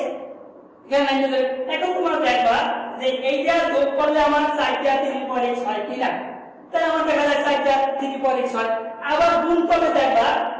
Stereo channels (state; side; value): identical; both; correlation 1.00